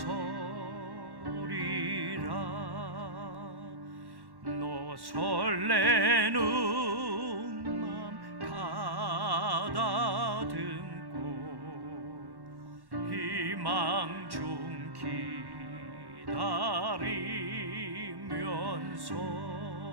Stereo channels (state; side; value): late; left; 1.1 ms